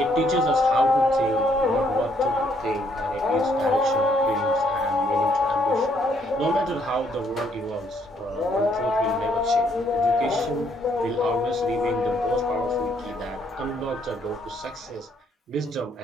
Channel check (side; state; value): both; normal; correlation 0.69